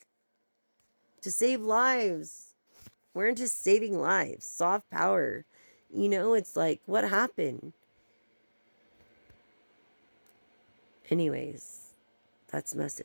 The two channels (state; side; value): inverted; both; correlation -1.00